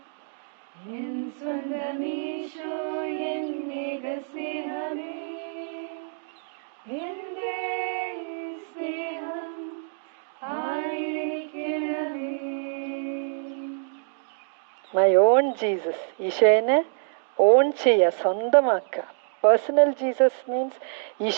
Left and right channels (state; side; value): silent; left; digital silence